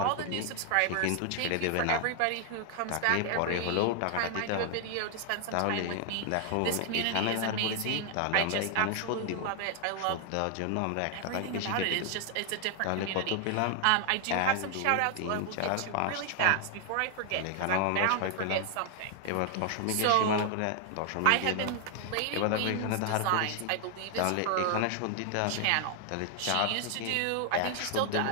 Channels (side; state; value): both; different; correlation 0.00